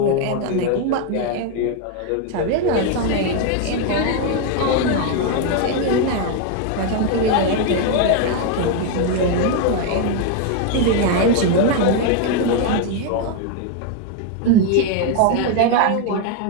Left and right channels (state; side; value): different; both; correlation 0.01